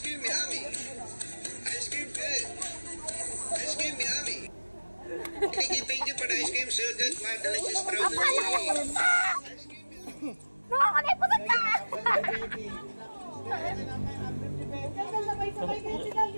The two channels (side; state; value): both; inverted; correlation -1.00